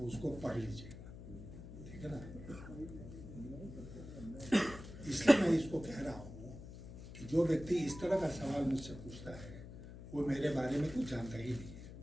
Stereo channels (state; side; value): noise; left; hum, 13 dB below the sound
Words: उसको पढ़ लीजिएगा, ठीक है ना। इसलिए मैं इसको कह रहा हूँ कि जो व्यक्ति इस तरह का सवाल मुझसे पूछता है वो मेरे बारे में कुछ जानता ही नहीं है।